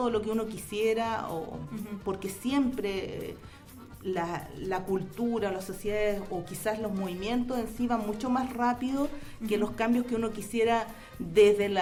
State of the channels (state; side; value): identical; both; correlation 1.00